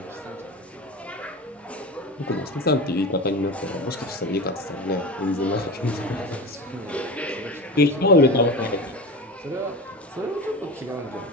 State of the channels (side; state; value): both; normal; correlation 0.28